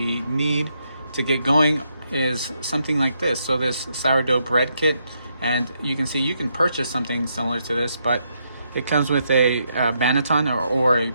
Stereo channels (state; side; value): inverted; both; correlation -0.78